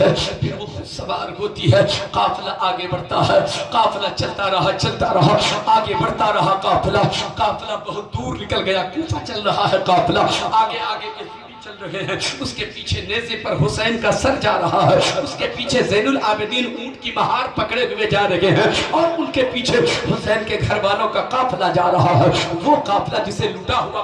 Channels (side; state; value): both; identical; correlation 1.00